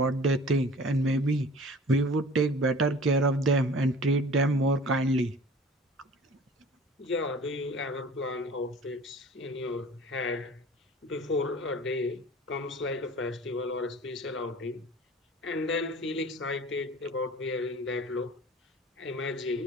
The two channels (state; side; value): normal; both; correlation 0.43